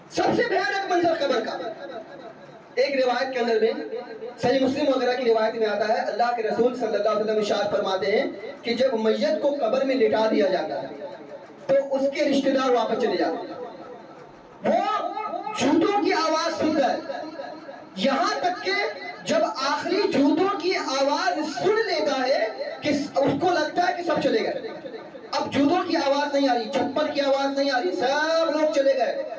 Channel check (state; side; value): identical; both; correlation 1.00